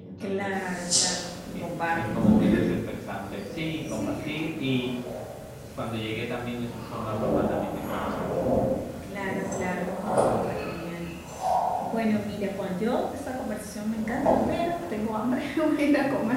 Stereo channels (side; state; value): both; identical; correlation 1.00